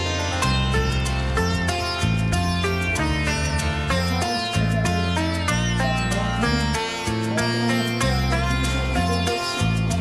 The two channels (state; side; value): identical; both; correlation 1.00